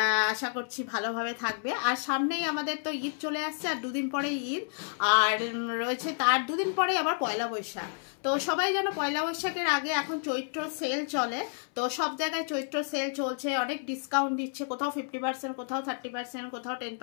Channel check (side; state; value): right; silent; 58 dB below the other